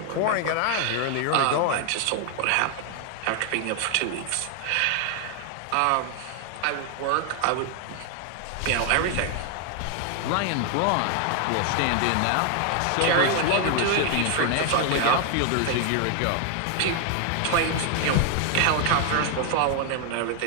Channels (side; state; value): both; different; correlation 0.00